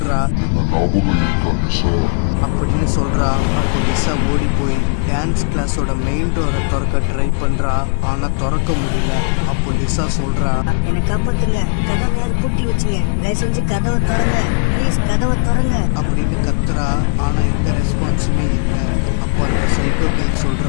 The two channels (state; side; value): silent; right; digital silence